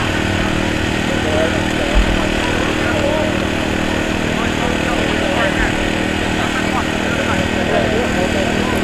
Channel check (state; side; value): identical; both; correlation 1.00